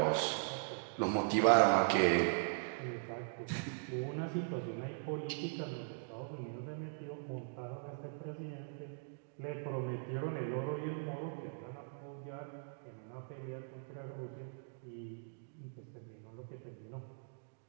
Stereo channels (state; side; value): silent; left; digital silence